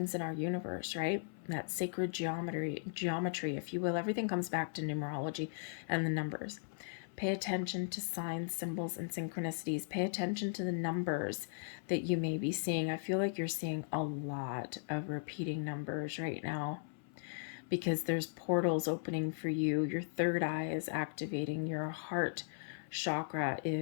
in our universe, right? That sacred geometry, if you will. Everything comes back to numerology and the numbers. Pay attention to signs, symbols, and synchronicities. Pay attention to the numbers that you may be seeing. I feel like you're seeing a lot of repeating numbers right now, because there's portals opening for you. Your third eye is activating. Your heart chakra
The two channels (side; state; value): right; silent; 53 dB below the other